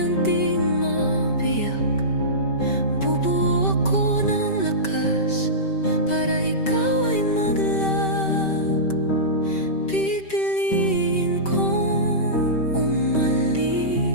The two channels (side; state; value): right; late; 5.2 ms